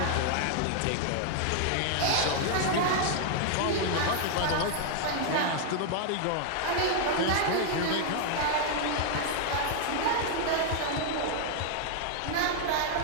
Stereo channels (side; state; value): both; different; correlation 0.00